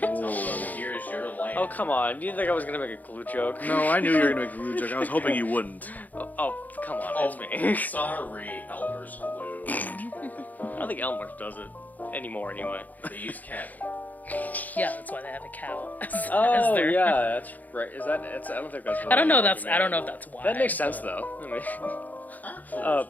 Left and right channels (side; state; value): right; late; 0.081 ms